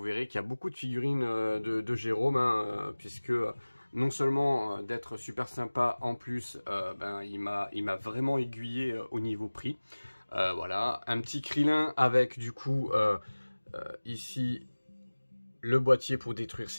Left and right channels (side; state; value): both; inverted; correlation -1.00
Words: qu'il y a beaucoup de figurines de Jérôme, puisque non seulement d'être super sympa, en plus, il m'a vraiment aiguillé au niveau prix. Voilà, un petit Krillin avec du coup, ici, le boîtier pour détruire